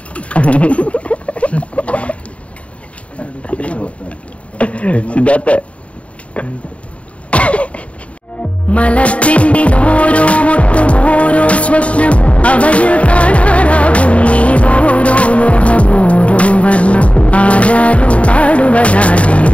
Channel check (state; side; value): late; right; 0.064 ms